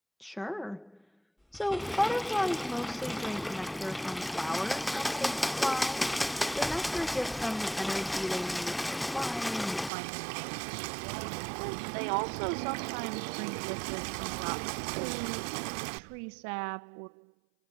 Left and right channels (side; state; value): left; drops out; at 9.9 s